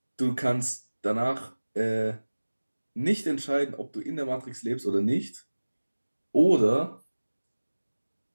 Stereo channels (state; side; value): inverted; both; correlation -1.00